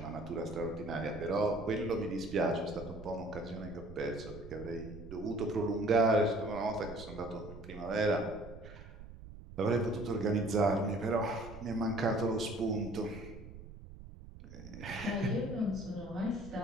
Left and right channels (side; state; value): right; noise; rumble, 15 dB below the sound